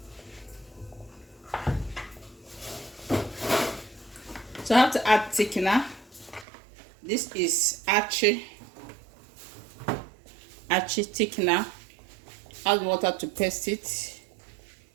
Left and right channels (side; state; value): left; drops out; at 6.5 s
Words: So I have to add thickener. This is Archie thickener. Add water to paste it.